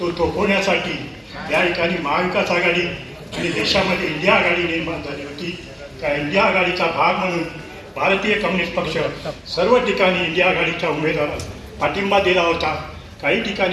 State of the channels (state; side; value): identical; both; correlation 1.00